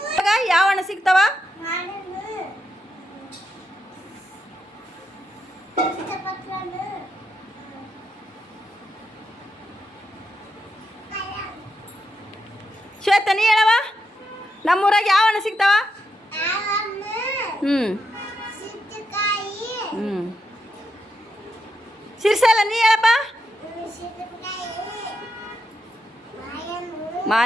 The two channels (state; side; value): normal; both; correlation 0.83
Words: ಯಾವ ಹಣ್ಣು ಸಿಗ್ತಾವ? ಶ್ವೇತ ನೀ ಹೇಳವ, ನಮ್ಮೂರಾಗ ಯಾವ ಹಣ್ಣು ಸಿಗ್ತಾವ? ಸಿರ್ಸಲ್ಲ ನೀ ಹೇಳಪ್ಪ.